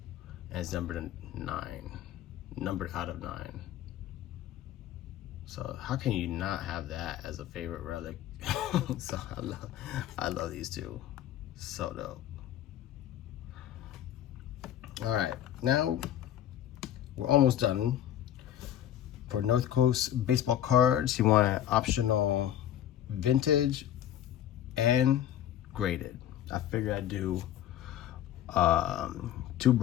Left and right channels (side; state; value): right; quieter; 11.3 dB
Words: and it's numbered 9, numbered out of 9. So how can you not have that as a favorite relic? So I love these two. So dope. All right, now we're almost done. For North Coast baseball cards, he wanted optional vintage and graded. I figured I'd do 2